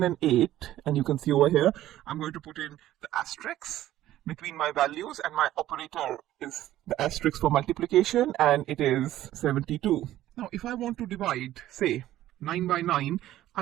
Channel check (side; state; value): left; quieter; 13.8 dB